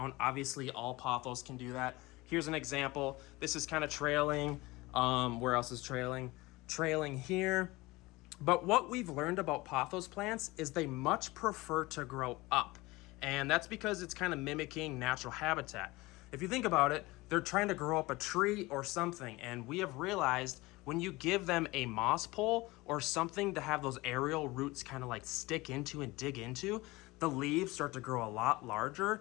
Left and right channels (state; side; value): quieter; right; 21.3 dB